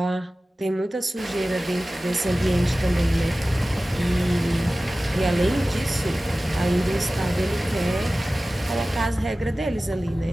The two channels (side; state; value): both; normal; correlation 0.96